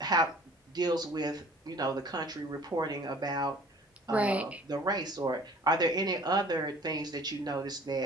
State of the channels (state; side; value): normal; both; correlation 0.50